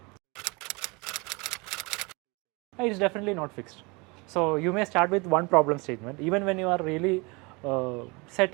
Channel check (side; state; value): left; quieter; 27.4 dB